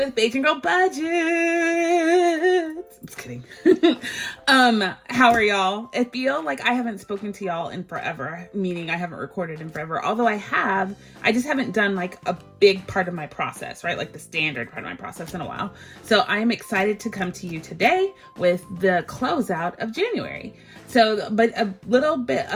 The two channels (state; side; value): identical; both; correlation 1.00